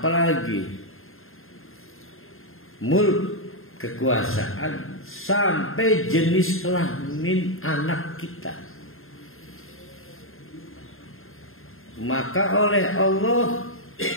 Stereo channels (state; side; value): late; right; 0.61 ms